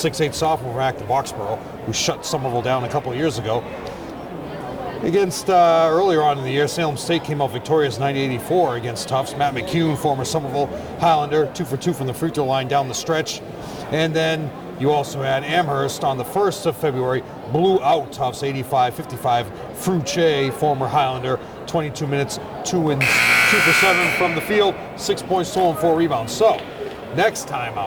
sophomore from Acton Boxborough, who shut Somerville down a couple of years ago. Against earlier on in the year, Salem State came out victorious 90-84 against Tufts. Matt McCune, former Somerville Highlander, 2 for 2 from the free throw line down the stretch. And then you also had Amherst on the 1st of February, blew out Tufts 85-55. Fruche, former Highlander, 22 minutes, 2 for 7 from the field, 6 points total and 4 rebounds. So, next time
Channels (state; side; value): identical; both; correlation 1.00